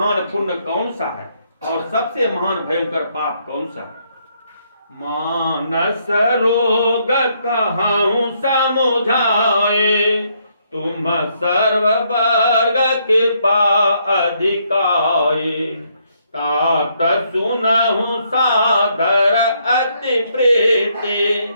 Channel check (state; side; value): inverted; both; correlation -0.73